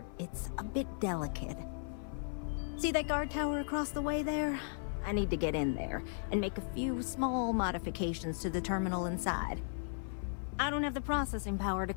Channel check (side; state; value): right; silent; 54 dB below the other